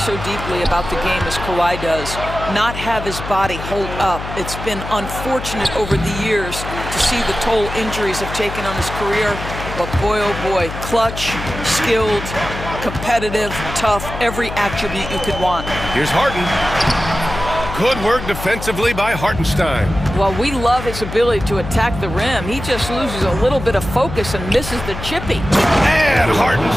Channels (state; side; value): noise; left; hum, 8 dB below the sound